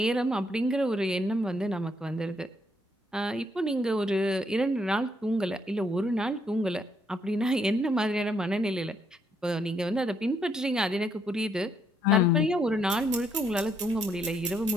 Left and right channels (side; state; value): both; normal; correlation 0.72